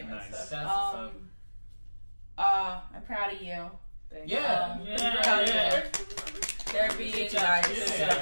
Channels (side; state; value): both; inverted; correlation -1.00